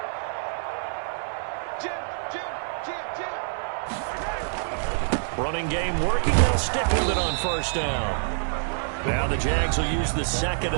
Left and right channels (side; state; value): left; silent; 61 dB below the other